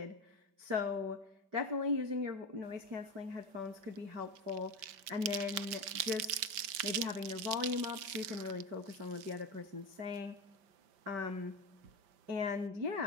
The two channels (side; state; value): left; late; 5.1 ms